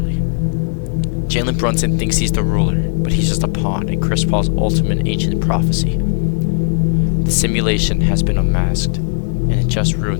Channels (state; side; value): silent; right; digital silence